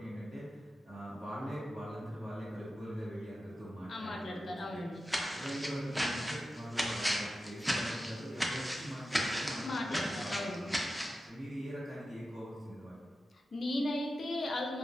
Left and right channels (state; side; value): normal; both; correlation 0.92